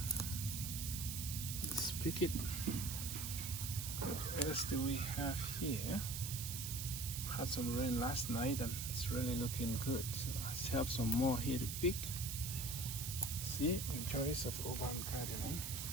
Let's pick it. What else do we have here? Had some rain last night and it's really looking good. So let's have some more here to pick. See, the choice of urban gardening.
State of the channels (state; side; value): noise; right; hiss, 4 dB below the sound